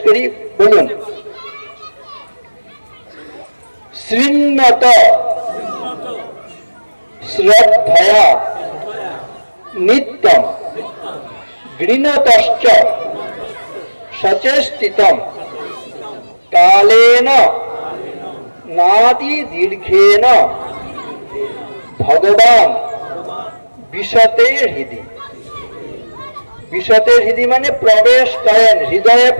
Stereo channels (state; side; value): inverted; both; correlation -1.00